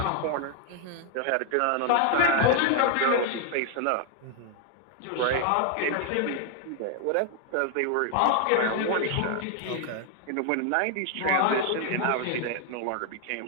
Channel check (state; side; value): different; both; correlation 0.00